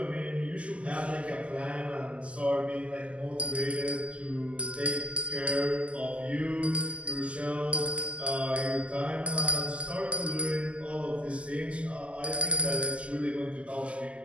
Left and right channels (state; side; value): late; left; 0.059 ms